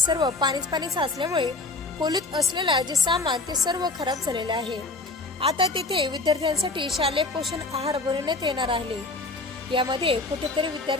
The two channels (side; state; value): right; quieter; 3.3 dB